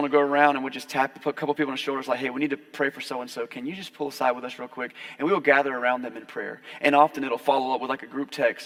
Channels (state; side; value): identical; both; correlation 1.00